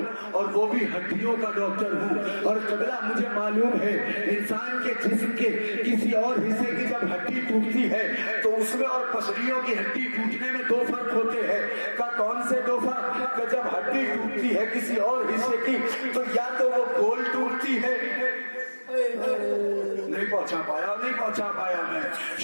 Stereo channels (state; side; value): inverted; both; correlation -1.00